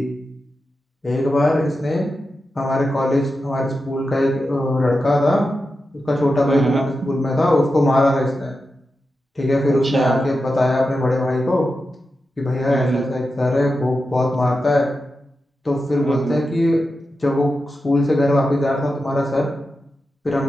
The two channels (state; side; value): normal; both; correlation 0.90